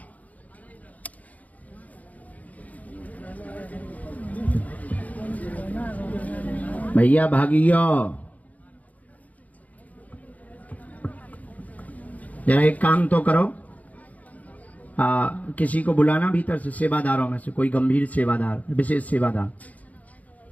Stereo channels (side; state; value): right; late; 0.074 ms